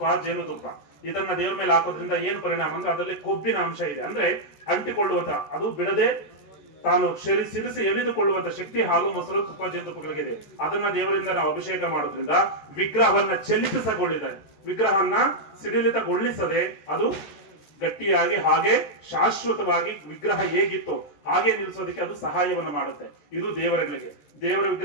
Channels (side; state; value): right; late; 14 ms